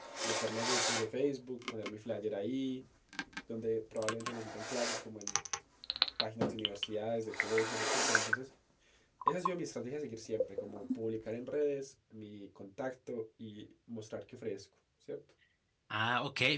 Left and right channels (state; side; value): identical; both; correlation 1.00